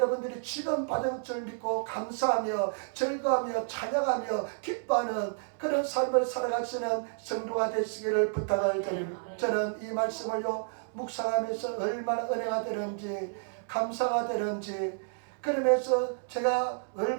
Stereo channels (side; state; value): left; silent; digital silence